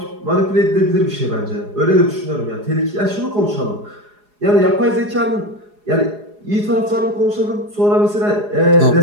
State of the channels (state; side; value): late; left; 4.8 ms